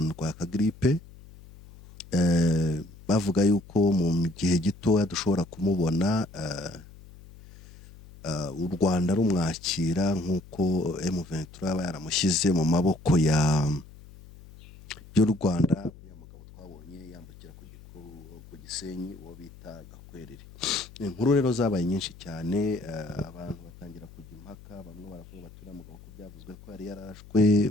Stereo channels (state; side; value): noise; left; hum, 20 dB below the sound